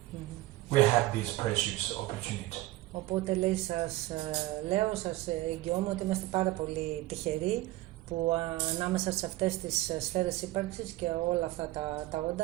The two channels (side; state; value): left; quieter; 17.7 dB